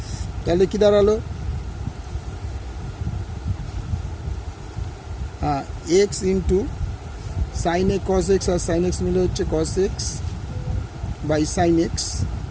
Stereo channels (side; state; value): both; identical; correlation 1.00